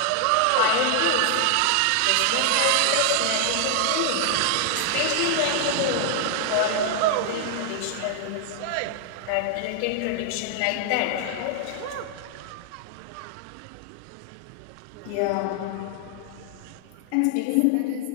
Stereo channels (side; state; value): both; different; correlation 0.00